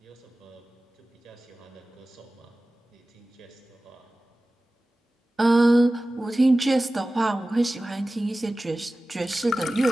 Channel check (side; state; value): both; normal; correlation 0.97